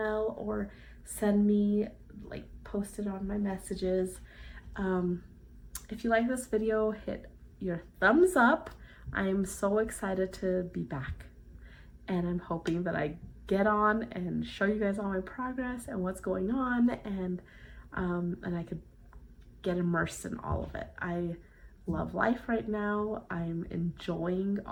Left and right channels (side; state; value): both; identical; correlation 1.00